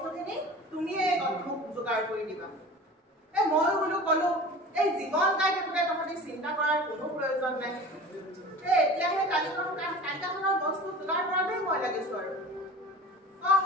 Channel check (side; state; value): both; normal; correlation 0.38